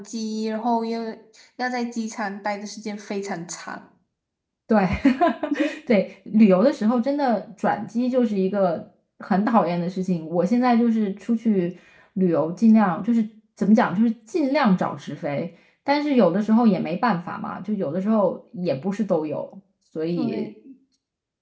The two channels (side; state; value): both; identical; correlation 1.00